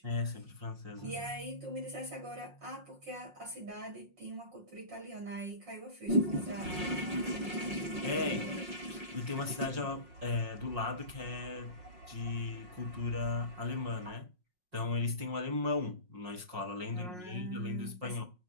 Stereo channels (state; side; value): late; left; 5.5 ms